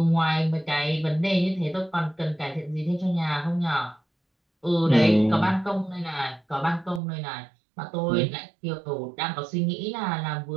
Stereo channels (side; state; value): left; drops out; at 7.0 s